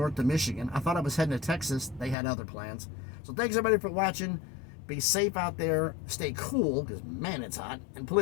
to Michigan. I thought I was heading to Texas. They had other plans. So thanks everybody for watching. Be safe out there. Stay cool because, man, it's hot. And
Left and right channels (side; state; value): right; drops out; at 2.1 s